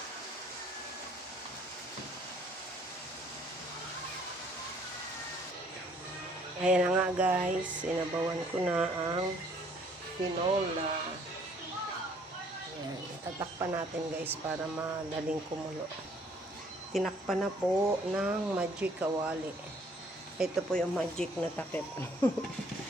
Ayan na nga guys, sinabawan ko na ang tinola. Ayan, tatakpan natin guys para madaling kumulo. Tinakpan na po ng magic kawali. Ito po yung magic na takip.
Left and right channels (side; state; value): both; normal; correlation 0.61